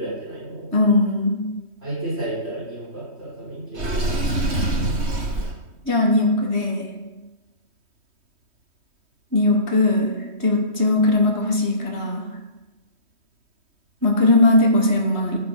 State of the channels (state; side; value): late; left; 3.1 ms